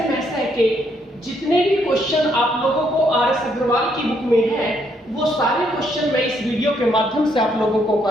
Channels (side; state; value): both; normal; correlation 0.72